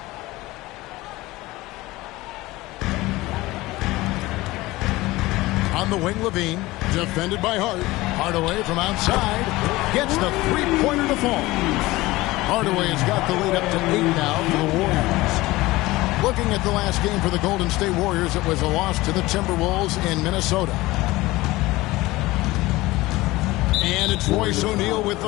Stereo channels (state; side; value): quieter; right; 19.5 dB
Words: On the wing, Levine, defended by Hart. Hardaway from outside gets the three-pointer to fall. Hardaway has got the lead up to 8 now for the Warriors. Looking at the last game for the Golden State Warriors, it was a loss to the Timberwolves in Minnesota. And it's Royce O'Neal with